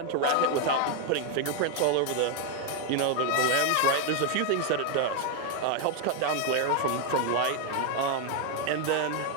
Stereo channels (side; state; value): both; different; correlation 0.01